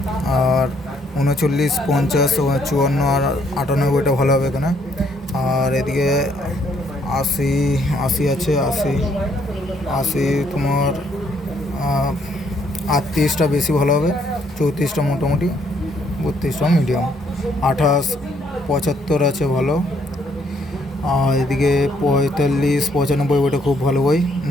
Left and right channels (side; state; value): both; normal; correlation 0.69